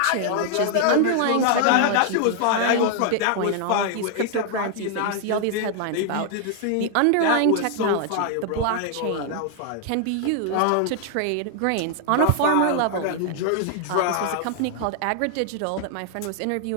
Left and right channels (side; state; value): both; different; correlation 0.00